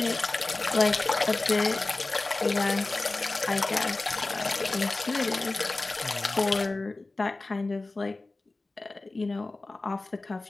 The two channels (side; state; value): right; quieter; 3.2 dB